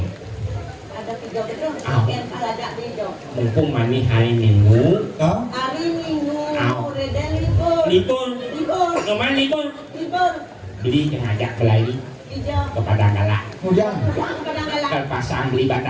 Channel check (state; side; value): identical; both; correlation 1.00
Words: Ada hijau itu. Au. Ken ada hijau. Mumpung mani hari Minggu. Hah? Hari Minggu. Au. Udah libur. Libur. Libur. Nyoman libur. Libur. Beli ngajak belai Hijau. kepada galak. Hujan. Yang kadang-kadang. Ke pasang beli